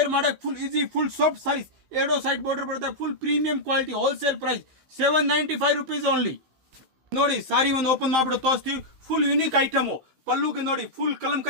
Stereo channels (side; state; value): left; late; 15 ms